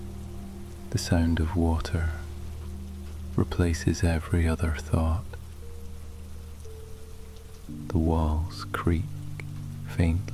The sound of water replaces every other thought. The walls creak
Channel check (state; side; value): identical; both; correlation 1.00